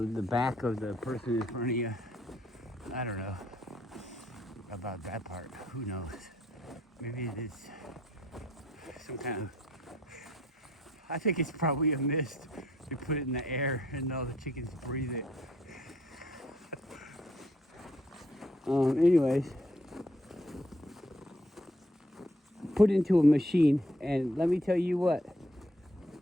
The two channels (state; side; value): normal; both; correlation 0.67